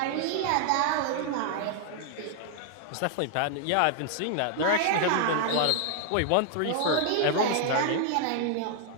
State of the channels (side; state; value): both; different; correlation 0.00